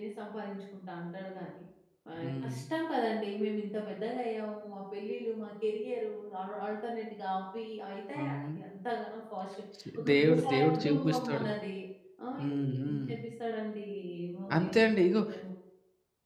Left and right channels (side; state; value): both; identical; correlation 1.00